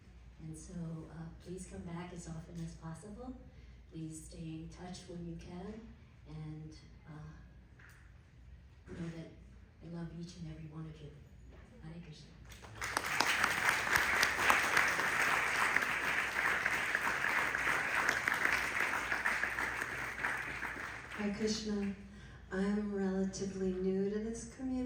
And so please come back as often as possible. Please stay in touch when you can, and know that I love each and every one of you. Hare Krishna. Hare Krishna. I'm relatively new to this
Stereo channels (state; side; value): identical; both; correlation 1.00